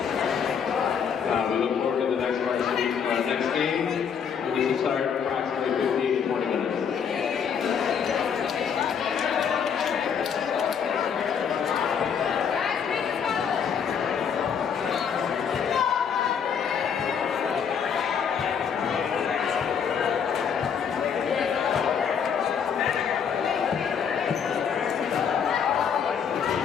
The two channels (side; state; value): right; quieter; 7.2 dB